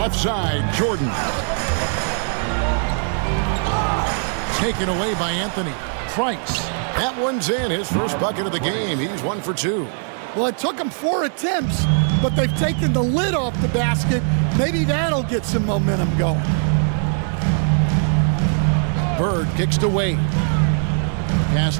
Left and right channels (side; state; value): left; silent; 57 dB below the other